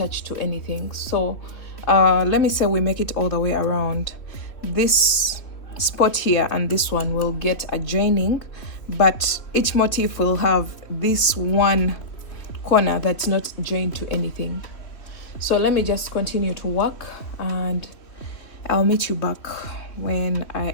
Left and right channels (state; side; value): late; right; 3.2 ms